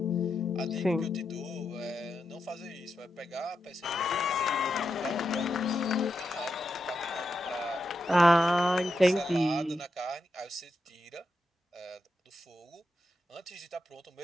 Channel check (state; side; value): normal; both; correlation 0.86